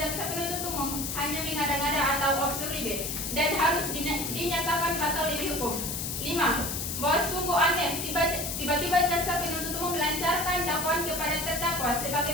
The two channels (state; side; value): noise; left; hiss, 4 dB below the sound